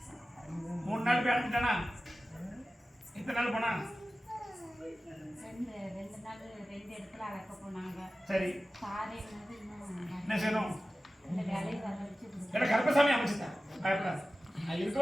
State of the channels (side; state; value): both; normal; correlation 0.95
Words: 3 நாள் போய் அடைஞ்சிட்டானா? எத்தனை நாள் போனா? சரி என்ன செய்யணும்? கருப்பசாமி அமைச்சுட்டேன். பயப்படாது. நான் இருக்க